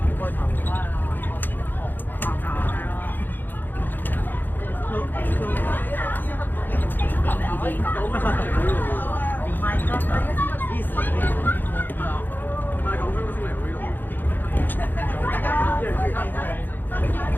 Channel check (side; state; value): right; late; 0.090 ms